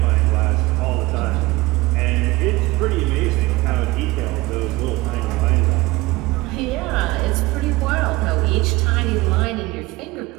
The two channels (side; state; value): left; quieter; 20.7 dB